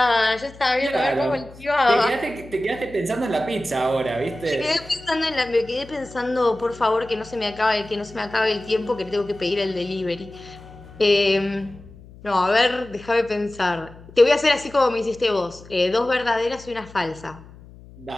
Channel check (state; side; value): noise; left; hum, 20 dB below the sound